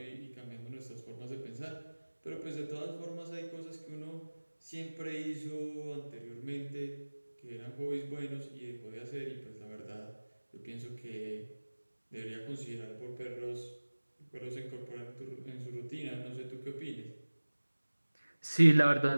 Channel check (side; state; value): both; inverted; correlation -1.00